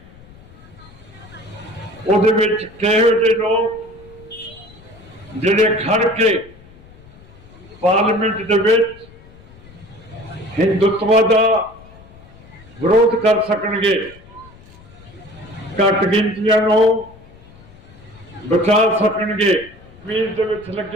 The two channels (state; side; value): noise; left; rumble, 23 dB below the sound